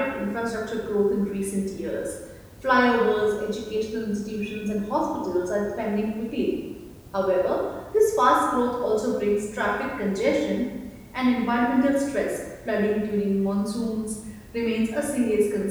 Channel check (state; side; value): identical; both; correlation 1.00